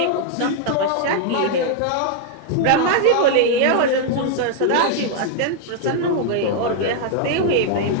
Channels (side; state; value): both; different; correlation 0.00